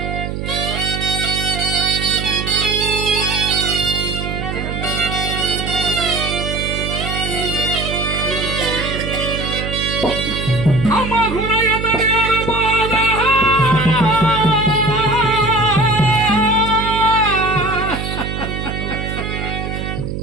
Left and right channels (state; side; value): noise; right; hum, 5 dB below the sound